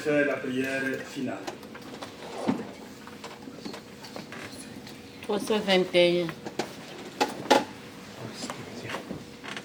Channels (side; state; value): both; identical; correlation 1.00